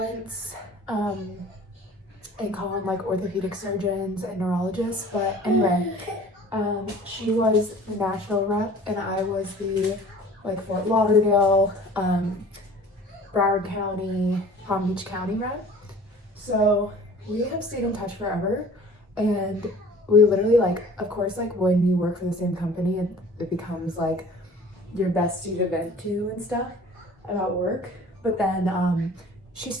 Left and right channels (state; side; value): normal; both; correlation 0.47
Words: and call them like orthopedic surgeons and neurologists. But anyway, she was the Nashville rep and I was the Fort Lauderdale, Broward County, Palm Beach County rep. So we have stayed in touch forever, and we literally of course when you work for the same company, it becomes like your bestie to vent to and stuff about work. But then she